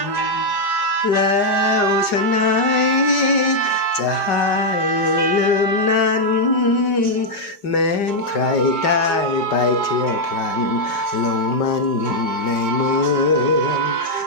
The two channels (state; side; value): late; right; 4.9 ms